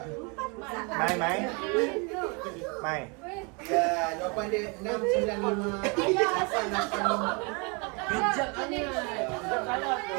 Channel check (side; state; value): left; quieter; 31.8 dB